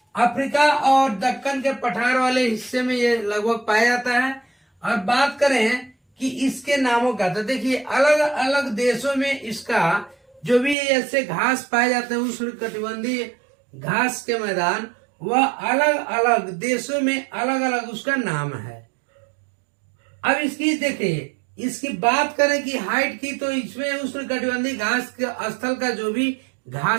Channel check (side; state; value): left; drops out; at 10.8 s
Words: अफ्रीका और दक्कन के पठार वाले हिस्से में ये लगभग पाया जाता है। और बात करें कि इसके नामों का, तो देखिए अलग अलग देशों में इसका जो भी ऐसे घास पाए जाते हैं उष्णकटिबंधीय घास के मैदान, वह अलग अलग देशों में अलग अलग उसका नाम है। अब इसकी देखिए, इसकी बात करें कि हाइट की, तो इसमें उष्णकटिबंधीय घास के स्थल का जो भी